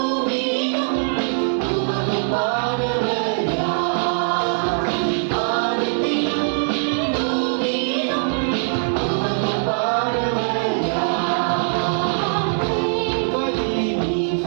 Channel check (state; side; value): silent; left; digital silence